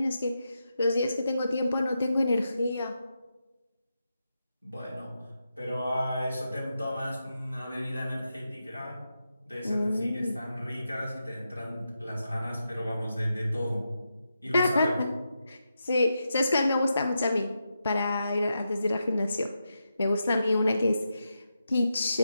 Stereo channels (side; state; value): both; inverted; correlation -0.87